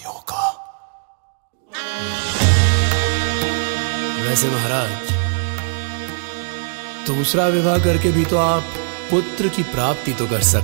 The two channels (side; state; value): left; silent; digital silence